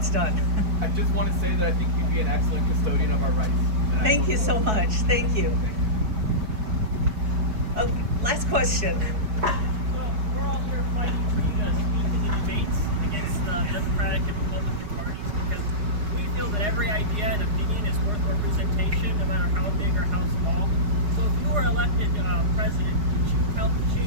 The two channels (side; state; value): left; late; 4.7 ms